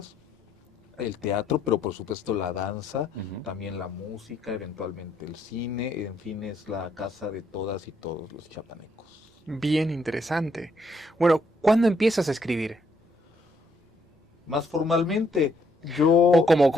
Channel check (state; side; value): normal; both; correlation 0.72